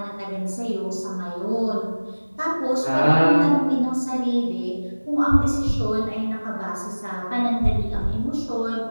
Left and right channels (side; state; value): both; inverted; correlation -1.00